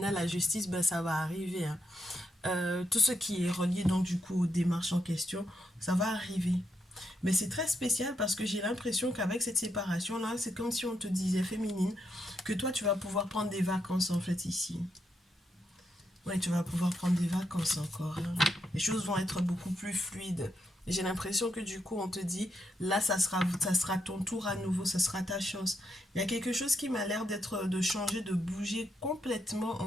la justice, ça va arriver. Hein. Tout ce qui est relié, donc, du coup, aux démarches en question, ça va arriver. Mais c'est très spécial parce que j'ai l'impression qu'avec cette séparation-là, c'est comme si on te disait, féminine, que toi, tu vas pouvoir prendre des vacances, en fait, ici. Ouais, tu vas pouvoir prendre des vacances encore. Hein. Les choses vont être beaucoup plus fluides. Et j'ai l'impression que du coup, on te dit, là, ça sera ton tour à nouveau, ça sera ta chance. Il y a quelque chose qui m'a l'air de changer, de bouger complètement,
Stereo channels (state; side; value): normal; both; correlation 0.80